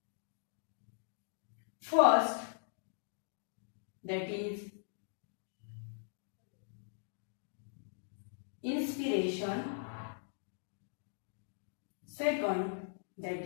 first, that is inspiration. Second, that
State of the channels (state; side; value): silent; right; digital silence